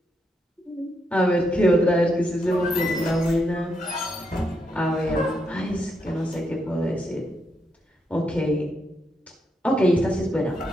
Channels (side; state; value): both; normal; correlation 0.80